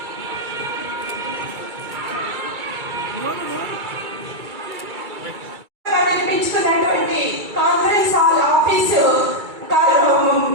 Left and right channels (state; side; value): late; left; 2.3 ms